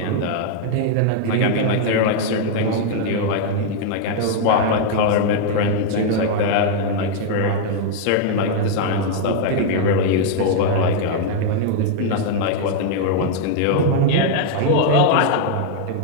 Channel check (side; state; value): both; different; correlation 0.00